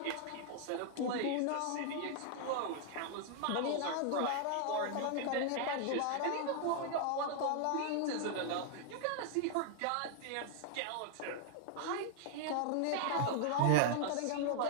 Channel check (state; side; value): different; both; correlation 0.00